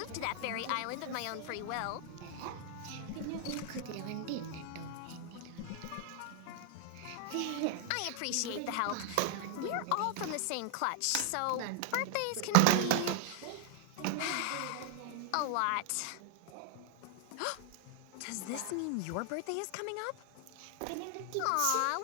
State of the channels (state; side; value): different; both; correlation 0.00